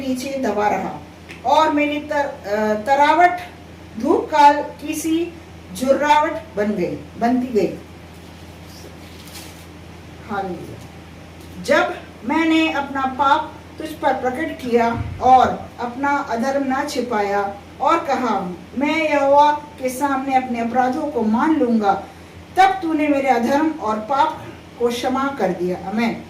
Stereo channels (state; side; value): identical; both; correlation 1.00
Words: नीचे दबा रहा और मेरी तरावट धूप काल की सी झुर्रावट बनती गई। हालेलुया। जब मैंने अपना पाप तुझ पर प्रकट किया और अपना अधर्म ना छिपाया और कहा मैं यहोवा के सामने अपने अपराधों को मान लूंगा, तब तूने मेरे अधर्म और पाप को क्षमा कर दिया। आमेन।